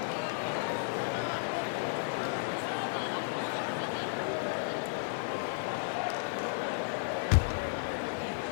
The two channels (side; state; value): right; silent; digital silence